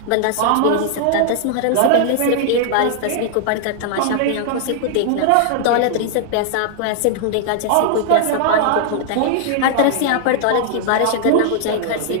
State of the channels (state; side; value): different; both; correlation 0.00